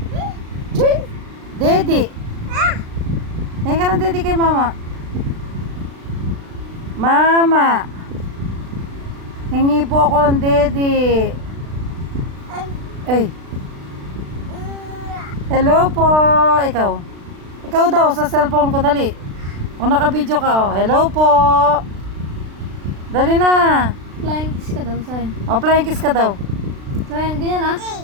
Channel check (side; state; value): left; late; 36 ms